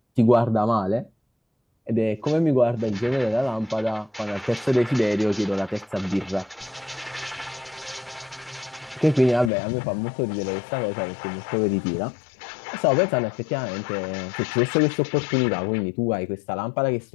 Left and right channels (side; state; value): right; drops out; at 9.5 s